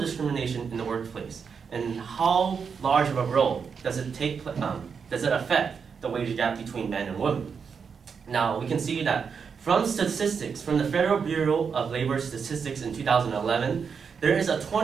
in the workplace and how large of a role does it affect the wage gap between men and women. Now, we can see that from statistics from the Federal Bureau of Labor Statistics in 2011, there is a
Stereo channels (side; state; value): left; quieter; 6.1 dB